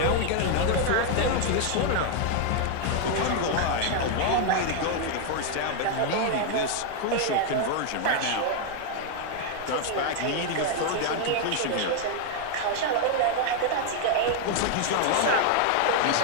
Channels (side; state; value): both; different; correlation 0.00